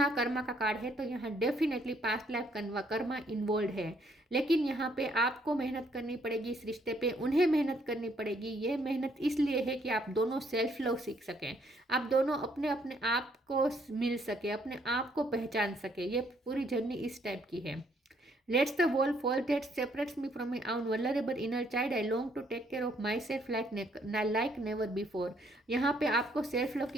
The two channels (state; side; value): normal; both; correlation 0.68